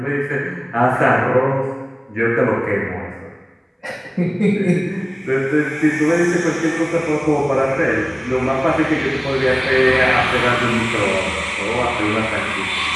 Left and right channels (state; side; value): identical; both; correlation 1.00